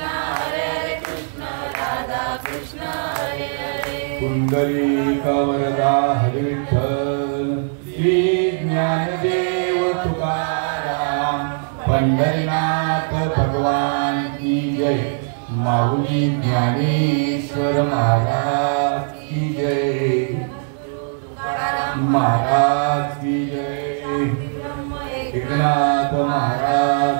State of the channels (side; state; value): left; silent; digital silence